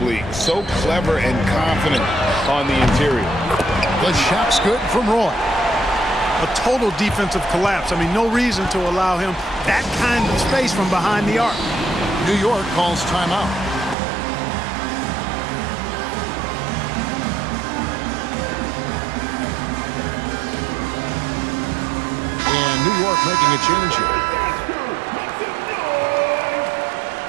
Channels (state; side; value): drops out; left; at 14.0 s